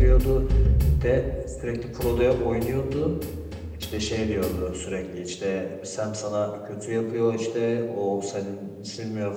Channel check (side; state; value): both; identical; correlation 1.00